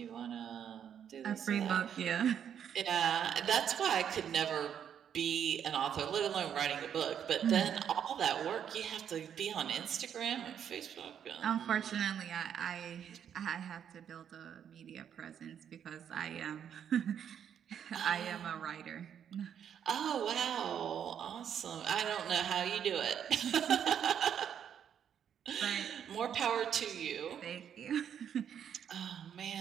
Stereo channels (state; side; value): quieter; left; 8.7 dB